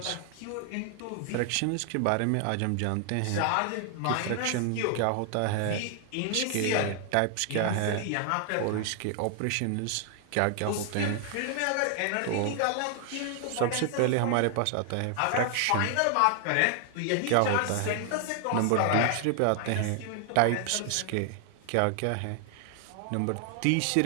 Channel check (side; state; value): both; different; correlation 0.00